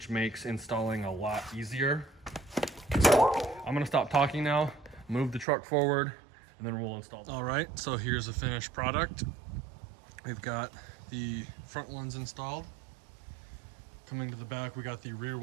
makes installing a lot easier. I'm gonna stop talking now, move the truck forward, and then we'll install them. All right, so here's the finished product. We've got the front ones installed. Coming to the back, we got the rear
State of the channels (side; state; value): left; drops out; at 5.5 s